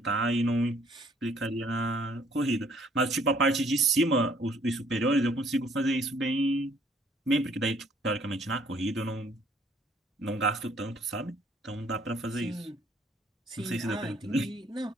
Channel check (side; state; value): both; normal; correlation 0.62